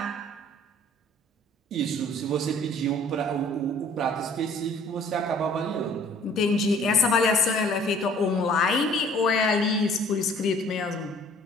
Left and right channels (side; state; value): both; normal; correlation 0.55